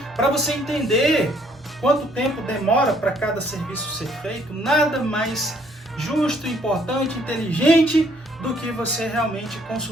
para você entender quanto tempo demora para cada serviço ser feito, nada mais justo, importante, inteligente do que você realmente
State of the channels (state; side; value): normal; both; correlation 0.64